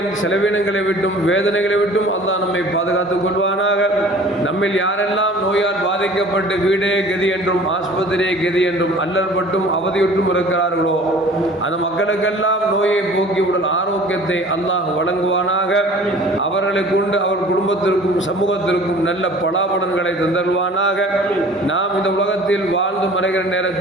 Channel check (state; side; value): normal; both; correlation 0.47